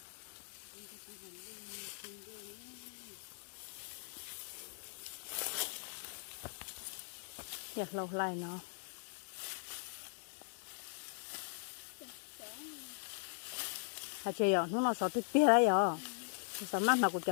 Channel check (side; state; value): right; silent; 51 dB below the other